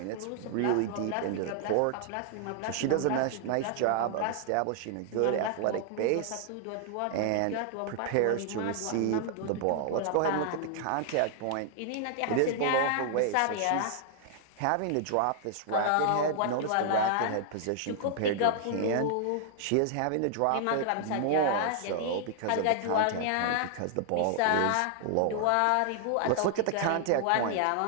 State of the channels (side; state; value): both; different; correlation 0.00